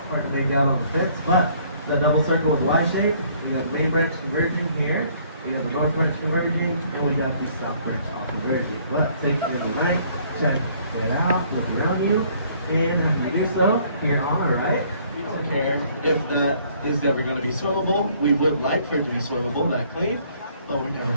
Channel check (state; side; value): inverted; both; correlation -0.61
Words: Hard to make out on the fence, but that double circle with the Y shape, we got the main branch converging here, we got the north branch converging, and we got the south branch off converging. But take your night, check it out, look around you, and if you do so, here on the right, we don't care if that is ever going to be swimmable. We would like for it to be swimmable, that clean, but we're never